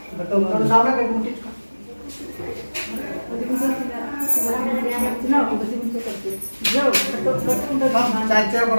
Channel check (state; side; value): inverted; both; correlation -1.00